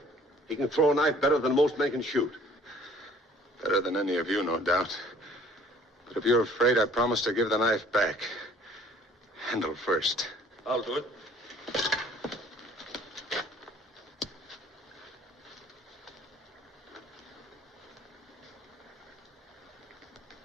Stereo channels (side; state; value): both; normal; correlation 0.55